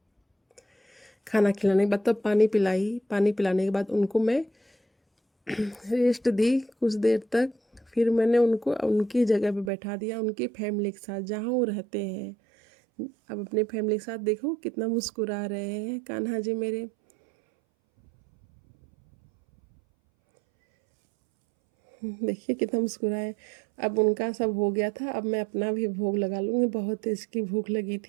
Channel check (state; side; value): drops out; left; at 9.7 s